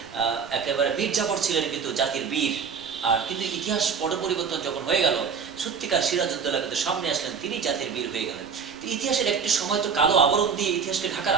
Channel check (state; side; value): quieter; left; 6.3 dB